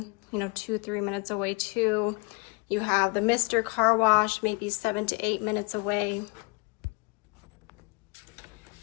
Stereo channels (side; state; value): right; quieter; 30.0 dB